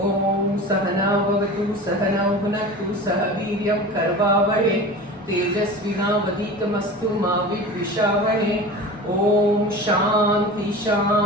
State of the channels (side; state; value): both; normal; correlation 0.34